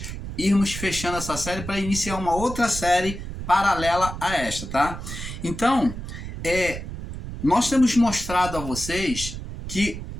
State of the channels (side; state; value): right; noise; rumble, 8 dB below the sound